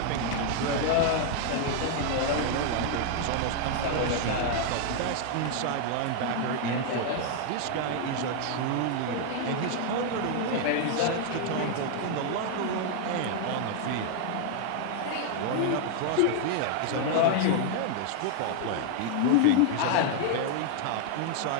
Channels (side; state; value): both; different; correlation 0.00